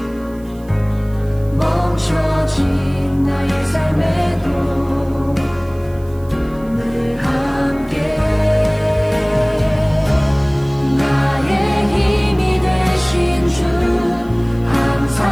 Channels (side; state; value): right; noise; hiss, 27 dB below the sound